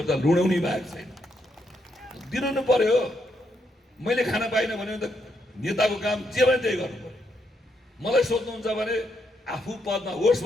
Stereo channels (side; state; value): both; normal; correlation 0.78